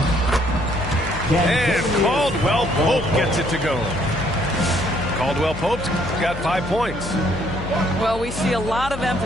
And Caldwell Pope gets it to go. Caldwell Pope's got 5 points. Well, we see a lot of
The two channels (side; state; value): left; noise; hum, 11 dB below the sound